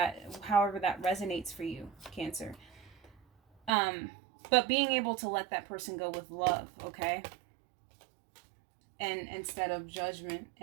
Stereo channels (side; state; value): left; drops out; at 3.7 s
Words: however that resonates for you, Cancer. But being able to let that person go with love, okay? And instead of judgment,